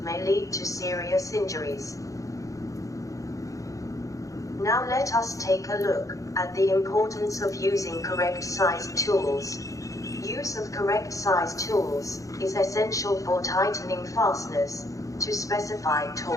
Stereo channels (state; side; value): late; right; 0.16 ms